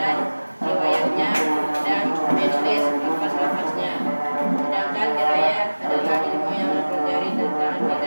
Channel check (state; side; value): inverted; both; correlation -1.00